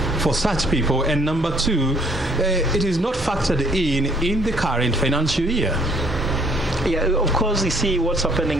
for such people, and number two, it is not factored in the current financial year? Yeah, of course, you see what's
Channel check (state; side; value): normal; both; correlation 0.61